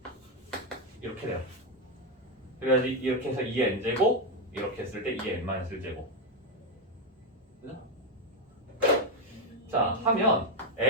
이렇게 돼요. 그래야지 이렇게 해서 2의 n제곱 이렇게 했을 때 2의 n-1제곱. 자, 하면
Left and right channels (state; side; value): normal; both; correlation 0.06